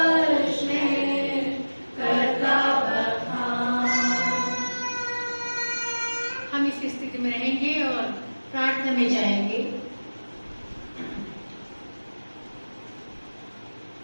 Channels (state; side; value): inverted; both; correlation -1.00